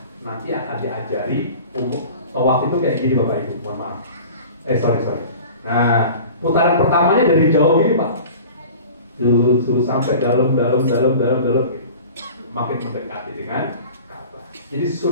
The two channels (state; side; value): inverted; both; correlation -0.41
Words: Nanti akan diajari tawaf itu kayak gini Bapak Ibu. Mohon maaf. Sorry. Nah, putaran pertamanya dari jauh gini Pak. Dulu sampai dalam makin mendekati dengan Ka'bah. Jadi